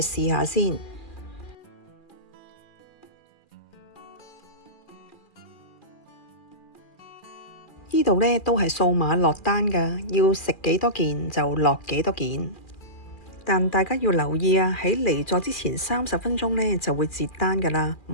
去試下先。呢度呢都係掃碼落單㗎，要食幾多件就落幾多件。但大家要留意啊，喺離座之前30分鐘呢就會截單㗎啦，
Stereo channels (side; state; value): right; late; 2.4 ms